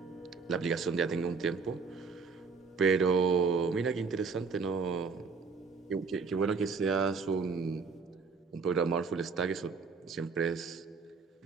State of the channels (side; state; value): left; quieter; 4.9 dB